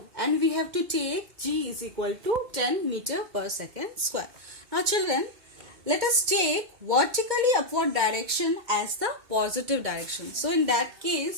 and we have to take g is equal to 10 meter per second square. Now children, let us take vertically upward direction as the positive direction. So in that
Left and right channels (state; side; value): late; left; 2.1 ms